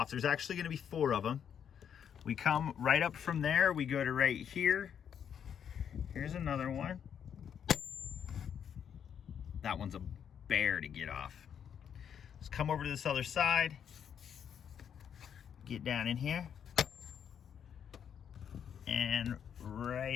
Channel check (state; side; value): quieter; right; 8.3 dB